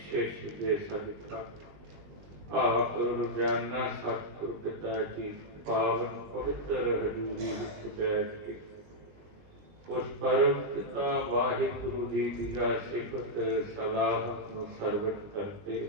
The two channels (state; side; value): late; left; 20 ms